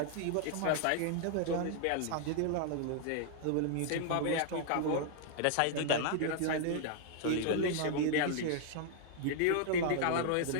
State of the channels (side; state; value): both; different; correlation 0.00